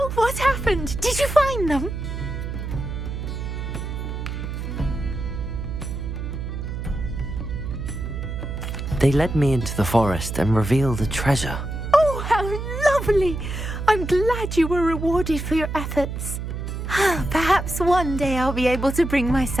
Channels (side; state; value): right; noise; hum, 5 dB below the sound